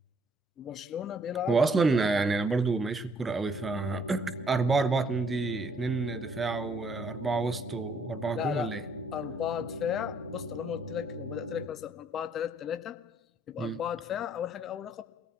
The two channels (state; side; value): normal; both; correlation 0.66